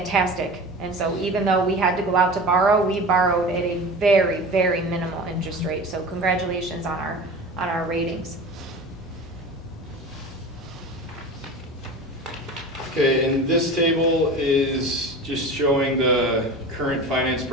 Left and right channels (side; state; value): both; normal; correlation 0.34